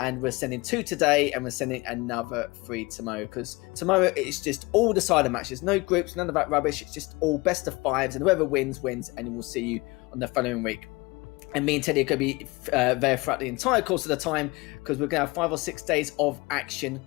we're sending 2 today, and we're sending another 3 tomorrow, because tomorrow it's just all decider matches, no groups, none of that rubbish. It's just all best of 5s, and whoever wins, and we'll see you on the following week. And me and Teddy are going to be there throughout the entire course of the time, because we're going to have 5 or 6 days of action.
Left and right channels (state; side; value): quieter; right; 24.0 dB